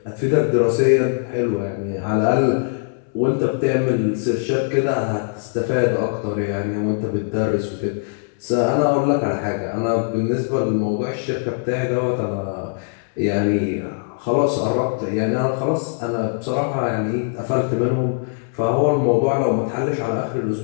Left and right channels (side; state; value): right; silent; 65 dB below the other